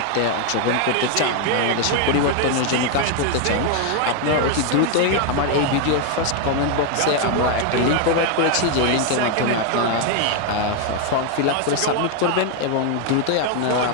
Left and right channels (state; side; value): different; both; correlation 0.01